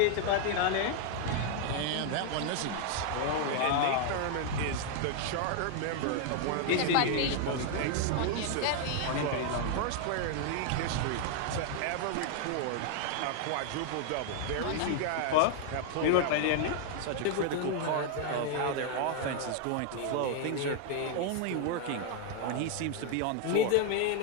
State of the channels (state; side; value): different; both; correlation 0.00